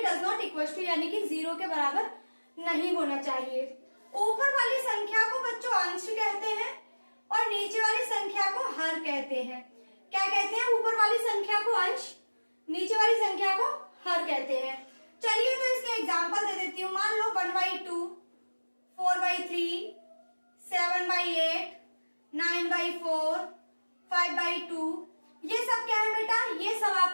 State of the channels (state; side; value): inverted; both; correlation -1.00